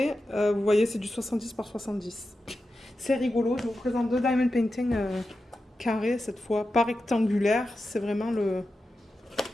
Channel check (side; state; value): both; normal; correlation 0.91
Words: Vous voyez, c'est du 70 par 70. C'est rigolo. Je vous présente 2 diamond painting carrés cette fois, pas rectangulaire. C'est vraiment le